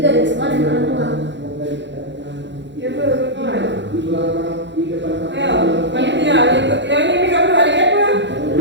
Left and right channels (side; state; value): left; late; 0.52 ms